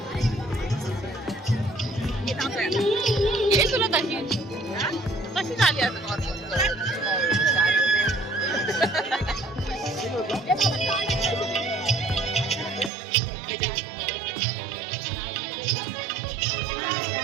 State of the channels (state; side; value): drops out; left; at 12.9 s